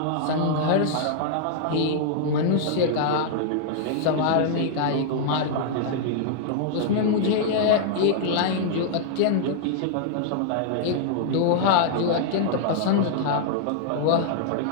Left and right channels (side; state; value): both; different; correlation -0.01